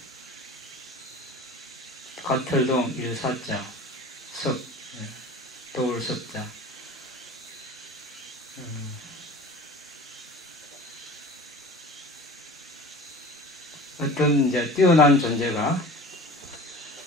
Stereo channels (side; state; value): both; normal; correlation 0.39